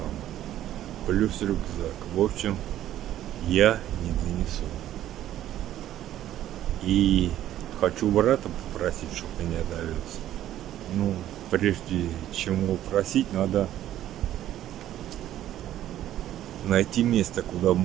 Плюс рюкзак. В общем, я не донесу. И хочу брата попросить, чтобы меня довез. Ну, прежде чем его просить, надо найти место, куда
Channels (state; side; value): quieter; left; 12.5 dB